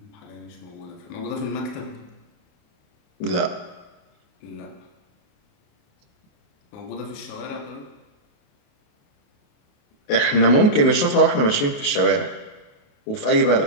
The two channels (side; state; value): right; late; 28 ms